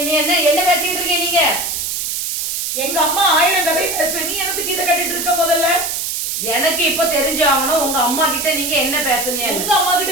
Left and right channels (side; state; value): right; noise; hiss, 2 dB below the sound